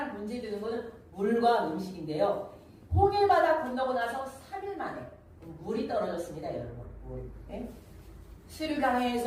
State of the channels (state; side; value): identical; both; correlation 1.00